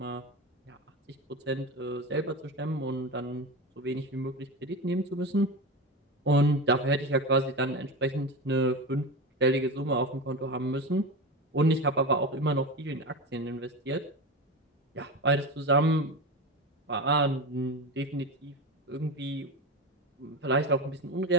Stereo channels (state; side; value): normal; both; correlation 0.23